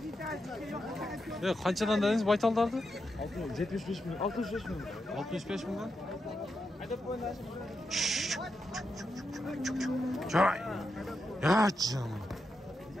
Ya qanchadan dediniz baytallarni? 75 milyon. 65 milyon. 65 milyon. Çay. Ya canım.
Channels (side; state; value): both; normal; correlation 0.86